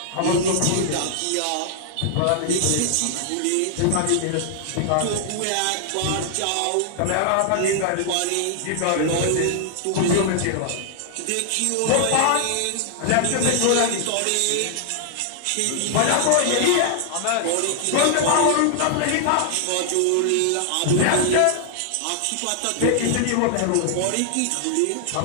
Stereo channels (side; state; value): both; different; correlation -0.01